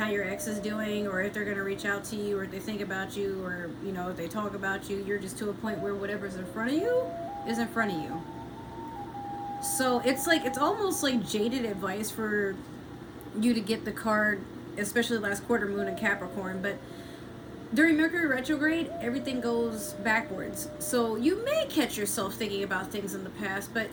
your ex is doing or if they're going to reach out to you or if they think about you or, you know, if they talk about you. You're just to a point where whatever's in front of you is in front of you. So it's like, it's almost like jaded advice for you to get the card, especially last quarter moon in Capricorn. But during Mercury retrograde, everything goes backwards. So you may catch yourself thinking about things in the past, but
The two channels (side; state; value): both; identical; correlation 1.00